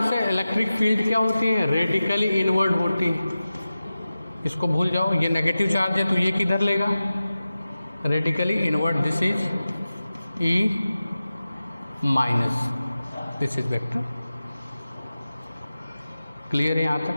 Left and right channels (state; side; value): inverted; both; correlation -0.95